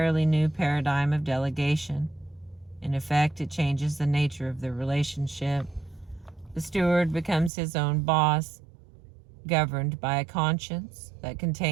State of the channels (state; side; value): drops out; left; at 7.5 s